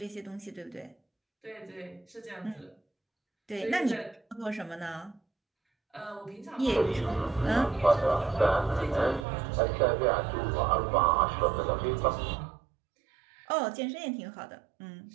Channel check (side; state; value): left; drops out; at 9.2 s